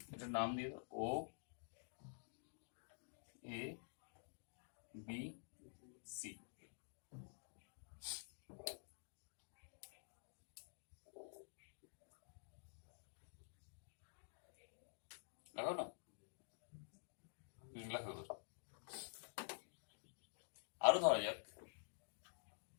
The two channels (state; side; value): silent; right; digital silence